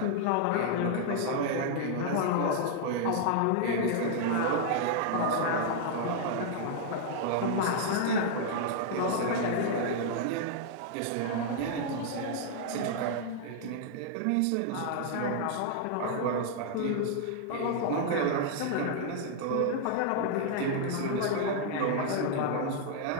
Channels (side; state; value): both; different; correlation -0.01